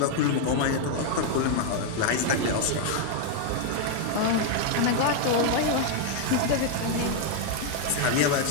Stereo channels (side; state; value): both; different; correlation 0.00